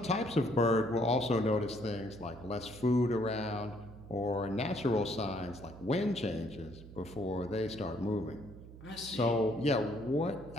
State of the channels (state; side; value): noise; right; hum, 16 dB below the sound